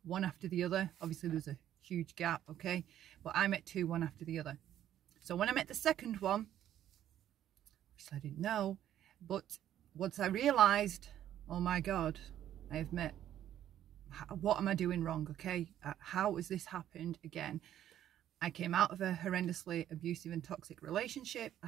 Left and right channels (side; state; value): left; quieter; 11.4 dB